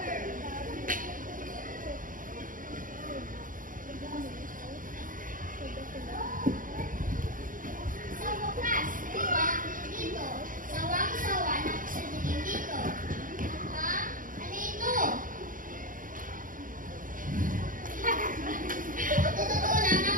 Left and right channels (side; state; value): left; late; 0.39 ms